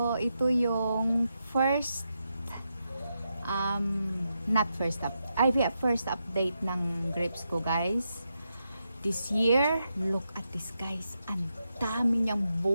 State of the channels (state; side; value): inverted; both; correlation -0.85